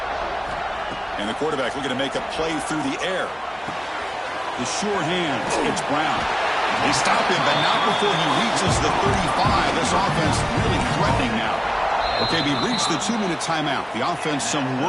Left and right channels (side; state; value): both; identical; correlation 1.00